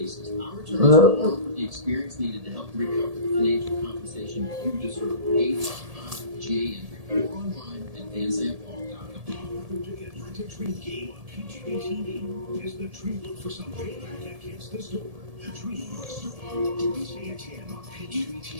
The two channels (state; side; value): late; left; 1.7 ms